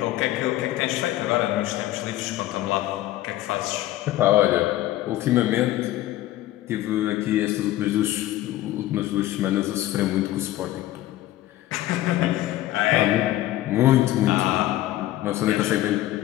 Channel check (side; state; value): right; quieter; 15.0 dB